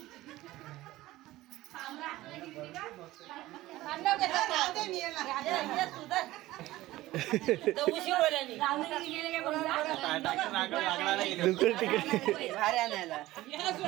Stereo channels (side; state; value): left; quieter; 17.0 dB